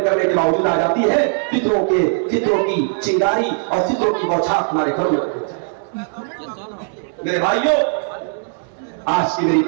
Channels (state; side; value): silent; left; 67 dB below the other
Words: کرنے کے باوجود آ جاتی ہے. فطروں کی چنگاری اور فطروں کی بوچھار تمہارے گھروں میں. میرے بھائیوں, آج کی میری